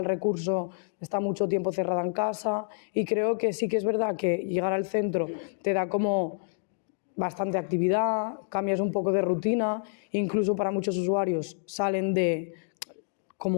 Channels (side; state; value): right; silent; digital silence